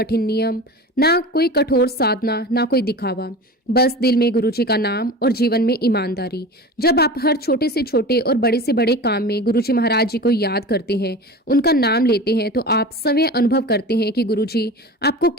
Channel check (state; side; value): normal; both; correlation 0.33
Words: नियम, ना कोई कठोर साधना, ना कोई दिखावा, बस दिल में गुरुजी का नाम और जीवन में ईमानदारी। जब आप हर छोटे से छोटे और बड़े से बड़े काम में गुरुजी महाराज जी को याद करते हैं, उनका नाम लेते हैं, तो आप स्वयं अनुभव करते हैं कि गुरुजी आपको